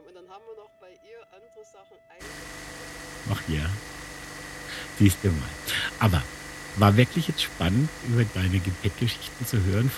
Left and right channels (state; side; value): identical; both; correlation 1.00